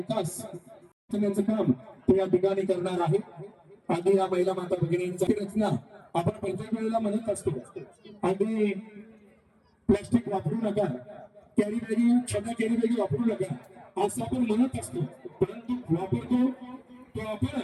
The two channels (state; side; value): identical; both; correlation 1.00